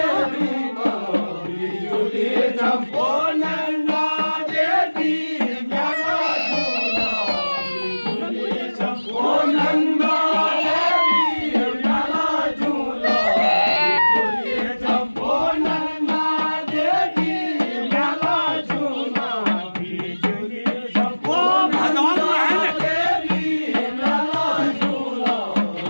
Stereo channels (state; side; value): inverted; both; correlation -1.00